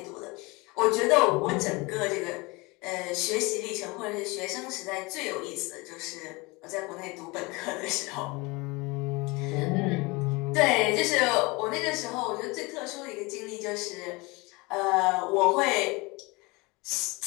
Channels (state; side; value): quieter; right; 25.2 dB